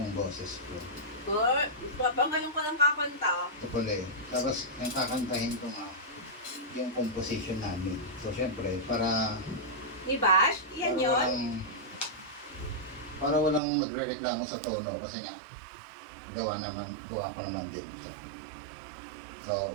boses ko. Ngayon ko lang kakanta. Ito pala eh. Tapos, yung kakantahin ko nga, yung composition namin. So, syempre, para Ni Bash? Yan yun? Para walang magre-reklamo sa tono kasi nga gawa ko naman din ito. So,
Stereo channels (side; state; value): left; drops out; at 13.6 s